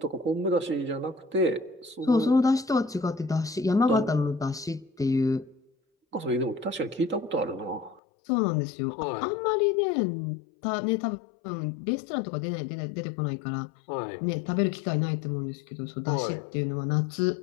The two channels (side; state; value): right; drops out; at 8.0 s